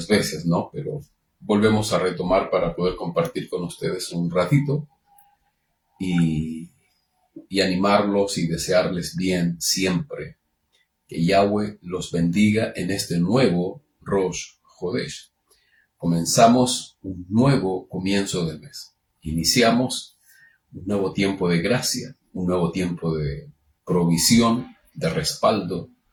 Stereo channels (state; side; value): identical; both; correlation 1.00